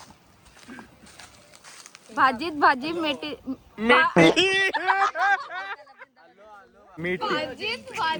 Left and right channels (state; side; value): identical; both; correlation 1.00